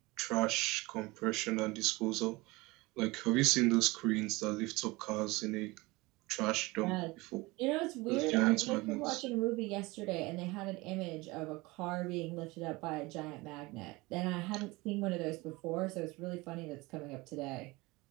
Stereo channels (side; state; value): left; quieter; 22.7 dB